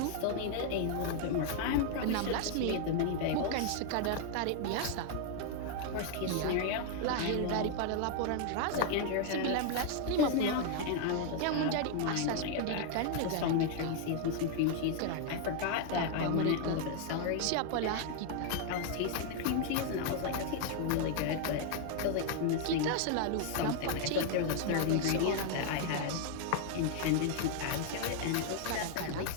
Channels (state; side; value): different; both; correlation 0.00